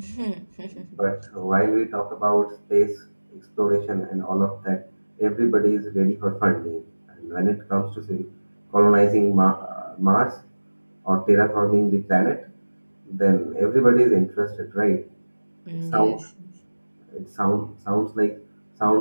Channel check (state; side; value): inverted; both; correlation -1.00